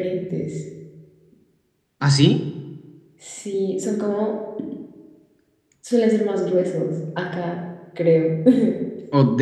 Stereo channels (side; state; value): both; identical; correlation 1.00